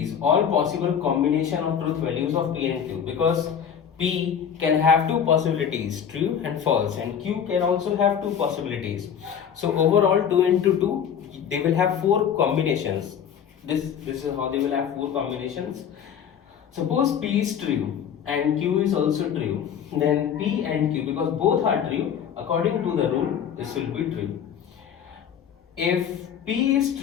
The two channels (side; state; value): right; quieter; 8.2 dB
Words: all possible combination of truth values of P and Q, because P can have two possibilities, true and false, and Q can also have two possibilities. So overall 2 into 2, they will have 4 combinations. This is how they will have 4 combinations. Suppose P is true and Q is also true, then P and Q, because both are true, according to the rule, this will be true. If P is